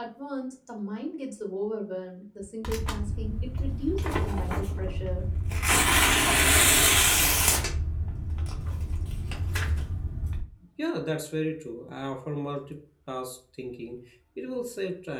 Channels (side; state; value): both; identical; correlation 1.00